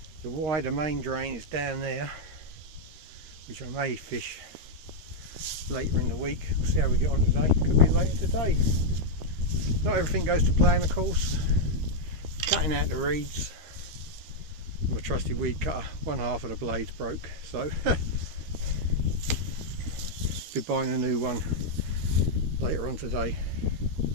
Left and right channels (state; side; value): late; left; 13 ms